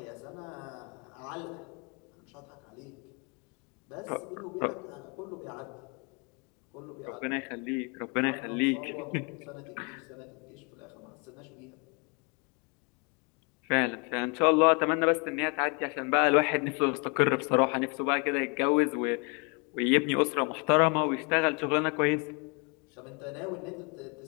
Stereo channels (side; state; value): right; quieter; 32.5 dB